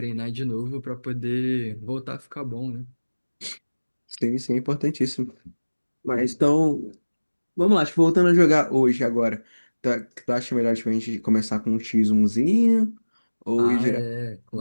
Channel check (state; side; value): inverted; both; correlation -1.00